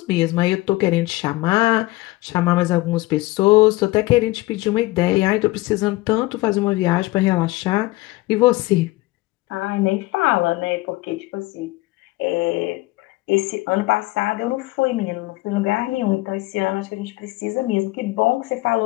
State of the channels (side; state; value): right; quieter; 20.2 dB